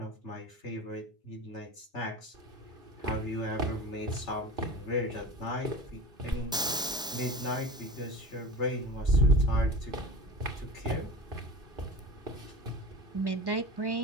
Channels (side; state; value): both; normal; correlation 0.33